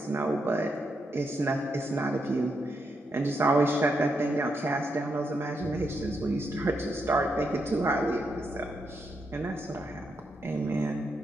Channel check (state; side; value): normal; both; correlation 0.82